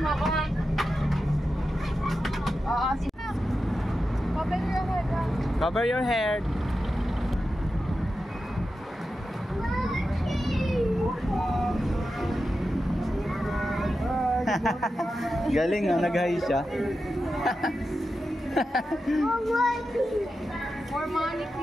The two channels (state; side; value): normal; both; correlation 0.90